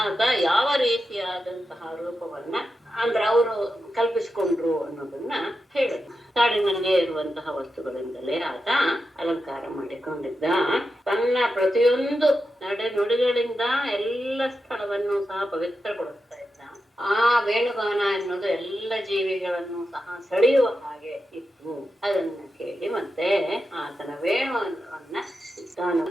ಆಗ ಯಾವ ರೀತಿಯಾದಂತಹ ರೂಪವನ್ನ ಅಂದ್ರೆ ಅವರು ಕಲ್ಪಿಸಿಕೊಂಡ್ರು ಅನ್ನೋದನ್ನ ಹೇಳಿದ್ರು. ಕಾಡಿನಲ್ಲೇ ಇರುವಂತಹ ವಸ್ತುಗಳಿಂದಲೇ ಆತ ಅಲಂಕಾರ ಮಾಡಿಕೊಂಡಿದ್ದ. ತನ್ನ ಪ್ರತಿಯೊಂದು ನಡೆ ನುಡಿಗಳಿಂದ ಎಲ್ಲ ಸ್ಥಳವನ್ನು ಸಹ ಪವಿತ್ರಗೊಳಿಸ್ತಾ ಇದ್ದ. ಆ ವೇಣುಗಾನ ಎನ್ನುವುದು ಎಲ್ಲ ಜೀವಿಗಳನ್ನು ಸಹ ಸೆಳೆಯುವ ಹಾಗೆ ಇತ್ತು. ಅದನ್ನ ಕೇಳಿ ಮತ್ತೆ ಆತನ ವೇಣುವನ್ನ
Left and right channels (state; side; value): normal; both; correlation 0.89